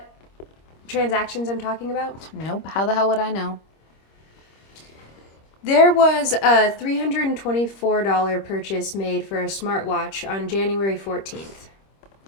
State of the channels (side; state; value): right; late; 26 ms